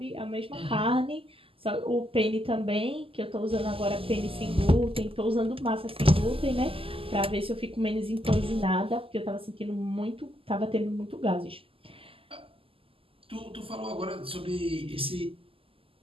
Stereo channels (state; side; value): late; left; 0.26 ms